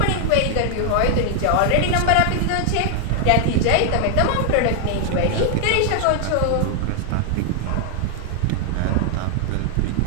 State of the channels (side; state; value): both; different; correlation 0.00